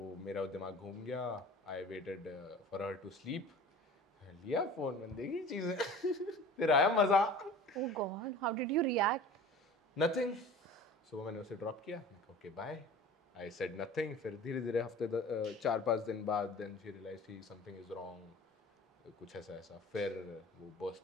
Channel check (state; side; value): normal; both; correlation 0.41